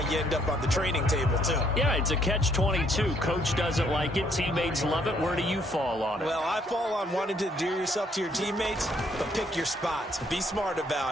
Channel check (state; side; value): normal; both; correlation 0.67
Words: you end up on the training table, too. Yeah, it's a catch-22. Coach doesn't like it. Teammates love it. Where do you fall on it? Well, I fall on wanting to endear yourself to your teammates, but pick your spots. Be smart